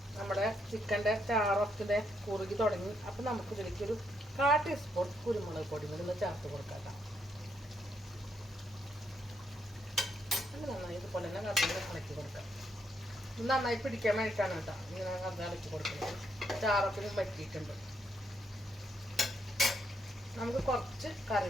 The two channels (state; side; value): normal; both; correlation 0.77